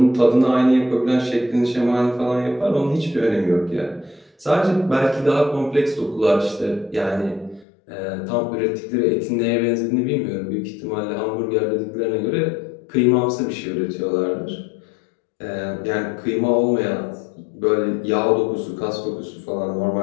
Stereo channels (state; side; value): drops out; right; at 7.7 s